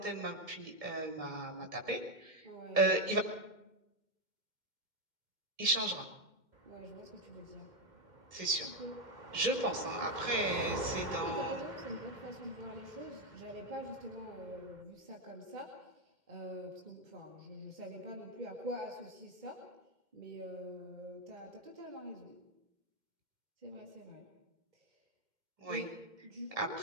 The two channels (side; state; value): left; late; 2.1 ms